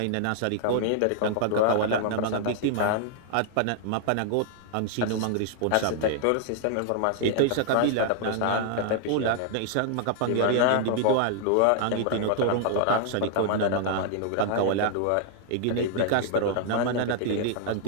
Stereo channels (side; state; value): both; different; correlation -0.01